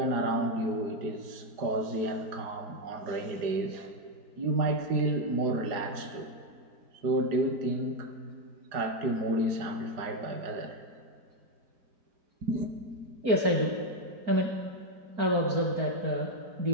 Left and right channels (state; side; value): late; left; 4.9 ms